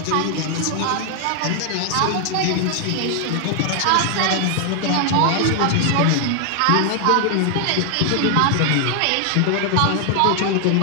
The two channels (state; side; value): different; both; correlation 0.00